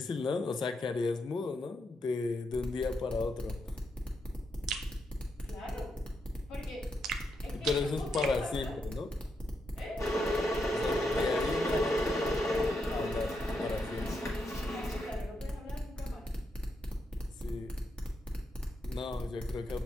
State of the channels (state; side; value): normal; both; correlation 0.82